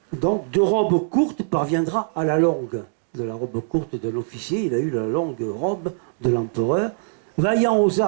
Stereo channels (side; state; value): left; silent; digital silence